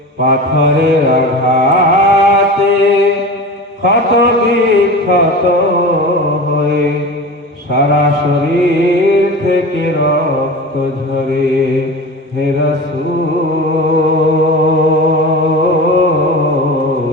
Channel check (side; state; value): both; normal; correlation 0.32